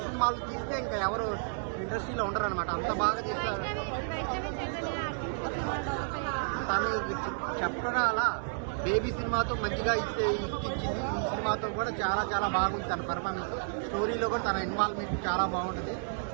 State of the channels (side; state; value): left; silent; digital silence